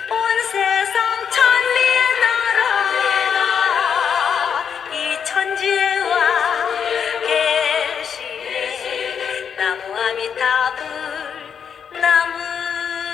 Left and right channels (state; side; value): quieter; right; 7.4 dB